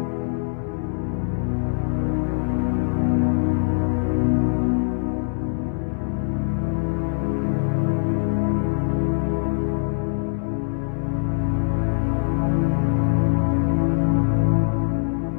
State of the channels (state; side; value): silent; right; digital silence